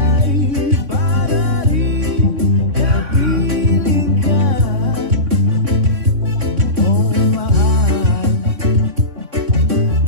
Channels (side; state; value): left; late; 3.5 ms